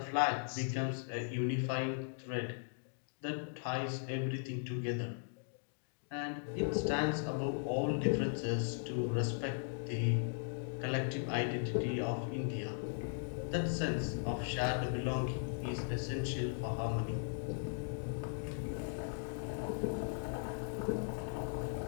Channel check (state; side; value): silent; right; digital silence